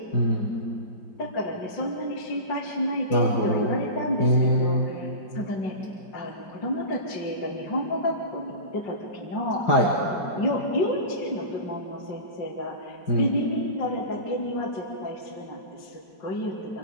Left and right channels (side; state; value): right; late; 5.0 ms